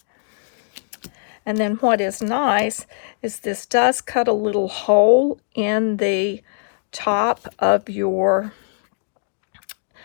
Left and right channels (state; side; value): silent; right; digital silence